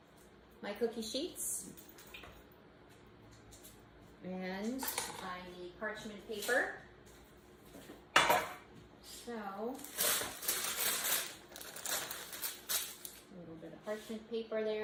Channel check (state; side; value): identical; both; correlation 1.00